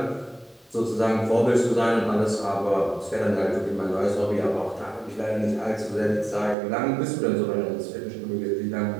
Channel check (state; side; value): drops out; left; at 6.6 s